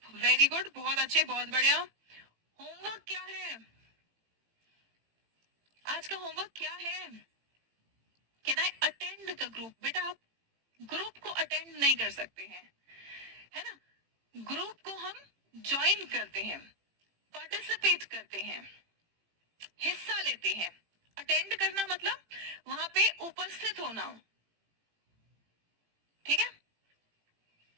Very good, बहुत अच्छे, बहुत बढ़िया। होमवर्क क्या है आज का? होमवर्क क्या है? Can I attend the group? बेटा आप ग्रुप को अटेंड नहीं कर सकते हैं, है ना। ग्रुप को हम ज्वाइन करते हैं, पार्टिसिपेट करते हैं, हिस्सा लेते हैं। अटेंड करना मतलब वहां पे उपस्थित होना, ठीक है।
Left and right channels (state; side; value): late; left; 18 ms